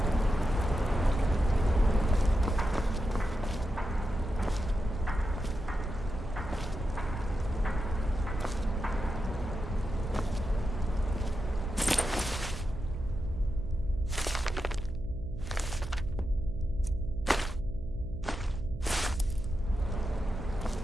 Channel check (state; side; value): noise; right; hum, 11 dB below the sound